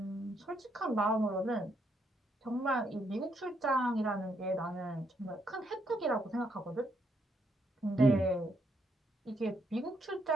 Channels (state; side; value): normal; both; correlation 0.75